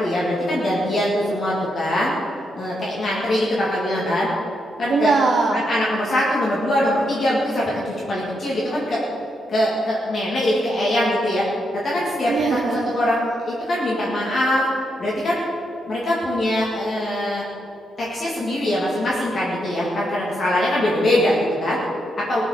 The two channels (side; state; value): both; normal; correlation 0.81